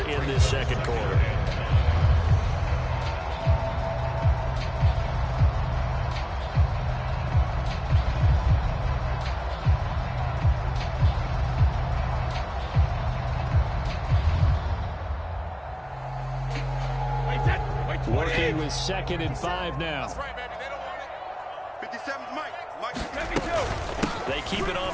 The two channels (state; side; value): identical; both; correlation 1.00